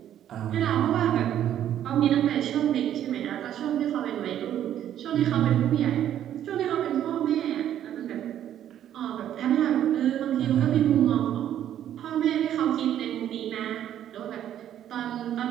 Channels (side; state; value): left; quieter; 10.9 dB